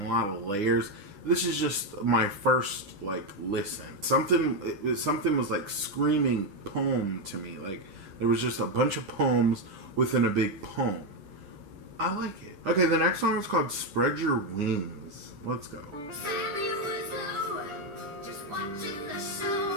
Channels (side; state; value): left; late; 9.9 ms